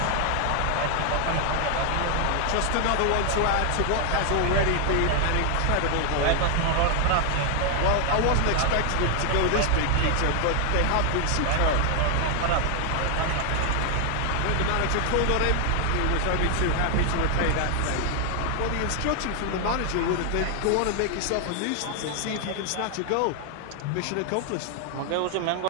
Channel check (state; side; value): different; both; correlation 0.00